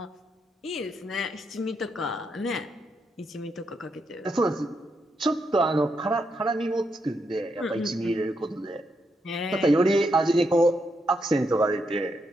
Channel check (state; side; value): normal; both; correlation 0.80